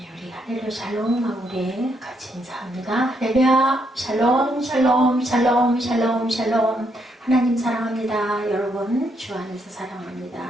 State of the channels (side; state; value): both; normal; correlation 0.75